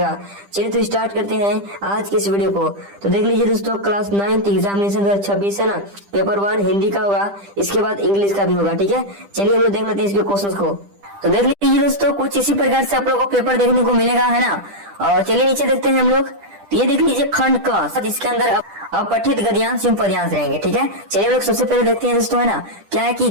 चलिए तो स्टार्ट करते हैं आज की इस वीडियो को। तो देख लीजिए दोस्तों, क्लास 9th एग्जामिनेशन 2026 है ना, पेपर 1 हिंदी का होगा, इसके बाद इंग्लिश का भी होगा। ठीक है, चलिए हम लोग देख लेते हैं इसके क्वेश्चंस को। तो देख लीजिए दोस्तों, कुछ इसी प्रकार से आप लोगों को पेपर देखने को मिलेगा है ना। और चलिए नीचे देखते हैं हम लोग। तो ये देख लीजिए खंड क, जिसके अंदर अपठित गद्यांश एवं पद्यांश रहेंगे। ठीक है, चलिए हम लोग सबसे पहले देखते हैं दोस्तों है ना, क्या है कि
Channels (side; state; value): left; late; 10 ms